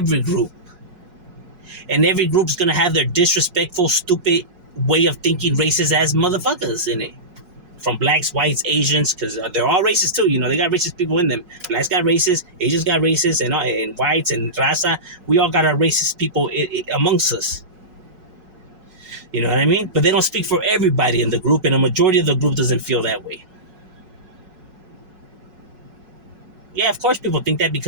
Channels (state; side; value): late; left; 5.4 ms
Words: group. And every group's going to have their disrespectful, stupid way of thinking, racist ass motherfuckers in it. From blacks, whites, Asians, because they're all racist too. They got racist people in them. Blacks got racist, Asians got racist, and whites and raza. We all got our racist people amongst us. You know what I mean? But they don't speak for everybody in the group, and a majority of the group doesn't feel that way. Yeah, of course people think that